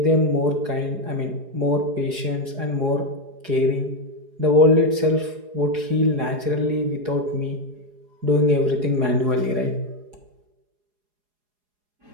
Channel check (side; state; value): left; late; 4.8 ms